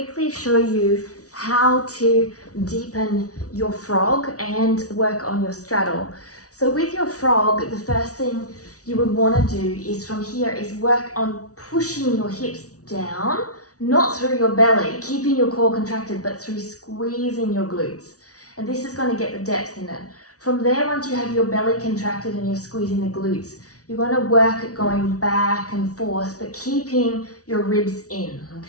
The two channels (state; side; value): late; right; 0.67 ms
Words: show you how to deepen your frog and work on your straddle. So with your frog, the first thing you would want to do is from here is work on pushing your hips down, not through your belly, keeping your core contracted, but through squeezing your glutes. And this is going to get the depth in it. From there, once you have your belly contracted and you're squeezing the glutes, you're going to work at going back and forth, but keeping your ribs in,